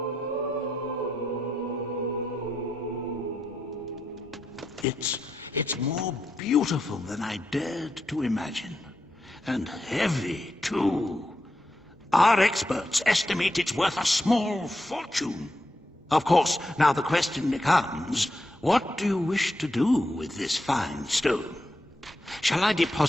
It's more beautiful than I dared to imagine. And heavy, too. Our experts estimate it's worth a small fortune. Of course, now the question becomes, what do you wish to do with this fine stone? Shall I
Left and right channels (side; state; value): both; normal; correlation 0.84